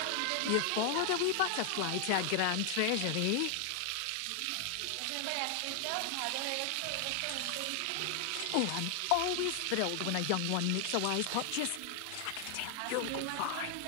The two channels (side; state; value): both; different; correlation 0.00